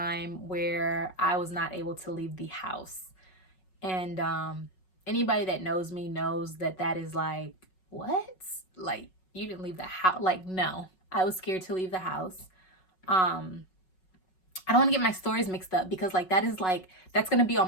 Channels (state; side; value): late; right; 5.4 ms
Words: where I was not able to leave the house. And anybody that knows me knows that that is like, what? Like, you didn't leave the house? Like, no, I was scared to leave the house. I don't want to get my stories mixed up because like that's going to be